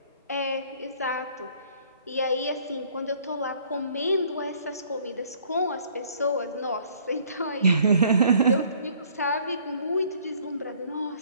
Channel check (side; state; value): both; inverted; correlation -0.58